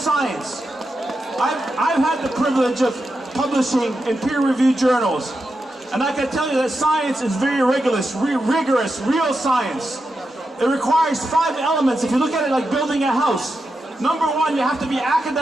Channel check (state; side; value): normal; both; correlation 0.88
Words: I've had the privilege of publishing in peer-reviewed journals, and I can tell you that science is very rigorous, real science. It requires 5 elements. If you look at it like building a house, number 1, you have to be